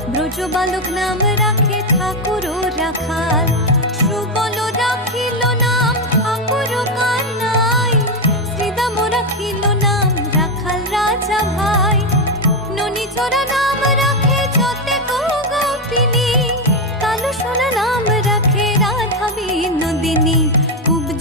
ব্রজ বালক নাম রাখে ঠাকুর রাখাল। সুবল রাখিল নাম ঠাকুর কানাই, শ্রীদাম রাখিল নাম রাখাল রাজা ভাই। ননীচরা নাম রাখে যতে গোপিনী, কালো সোনা নাম রাখে রাধা বিনোদিনী।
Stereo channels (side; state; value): both; normal; correlation 0.08